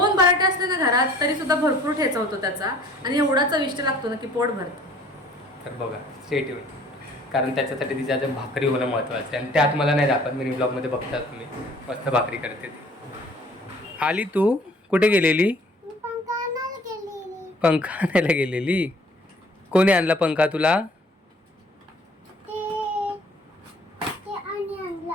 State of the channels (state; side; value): normal; both; correlation 0.54